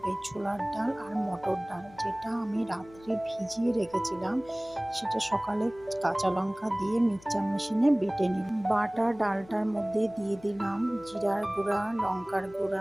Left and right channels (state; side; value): noise; left; hum, 23 dB below the sound